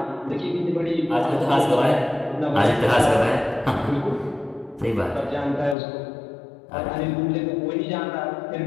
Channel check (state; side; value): drops out; right; at 5.8 s